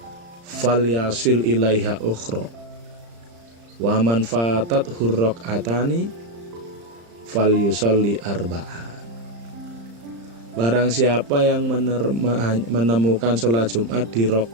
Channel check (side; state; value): left; late; 35 ms